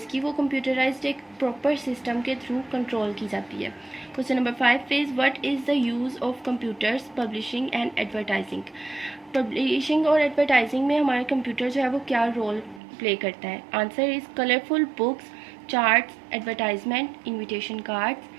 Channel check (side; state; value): left; drops out; at 12.8 s